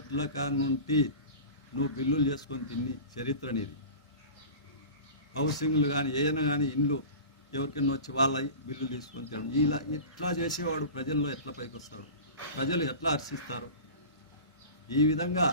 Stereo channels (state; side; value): inverted; both; correlation -0.35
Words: కానుంటి నువ్వు బిల్లులు చేసుకొని తిని చరిత్ర నీది. హౌసింగ్లు కానీ ఏదైనా కానీ ఇండ్లు ఎవరికైనా వచ్చి వాళ్ళ బిల్లులు తీసుకొని తినడం, ఇలా ఎట్లా చేసేవాడు ప్రజల్లో ఎట్లా పైకి వస్తాడు, ప్రజలు ఎట్లా హర్షిస్తారు? ఈ విధంగా